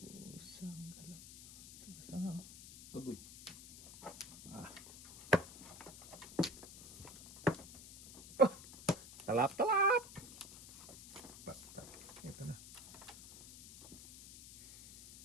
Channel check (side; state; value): left; noise; hiss, 15 dB below the sound